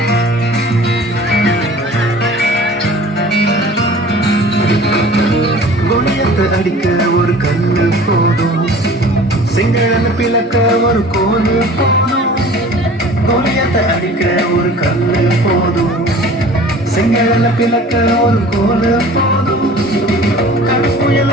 அடிக்க ஒரு கண்ணு போதும், செங்கடன பிளக்க ஒரு கோலு போதும். கோலியத்தை அடிக்க ஒரு கண்ணு போதும், செங்கடன பிளக்க ஒரு கோலு போதும். கடற்புயல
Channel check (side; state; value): both; normal; correlation 0.45